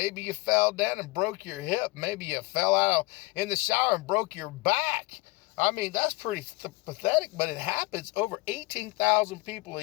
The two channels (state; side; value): quieter; right; 23.3 dB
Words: you fell down and broke your hip, maybe you fell out in the shower and broke your back. I mean, that's pretty pathetic, but it happens. Over 18,000 people a